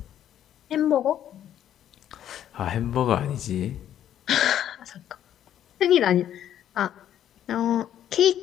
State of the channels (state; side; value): quieter; right; 10.8 dB